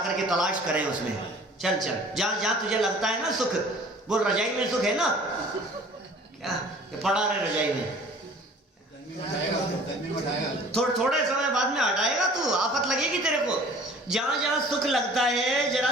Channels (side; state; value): both; normal; correlation 0.49